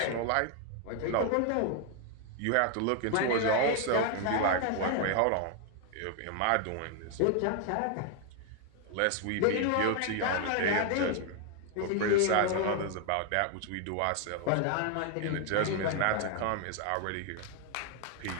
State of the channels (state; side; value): different; both; correlation 0.00